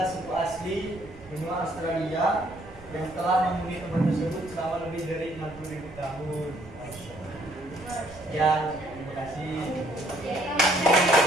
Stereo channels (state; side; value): noise; right; rumble, 19 dB below the sound